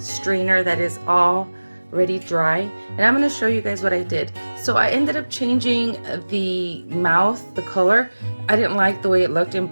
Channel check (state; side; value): inverted; both; correlation -1.00